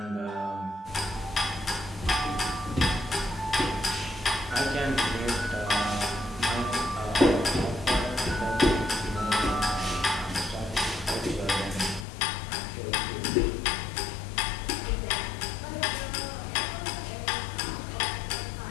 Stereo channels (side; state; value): right; drops out; at 12.1 s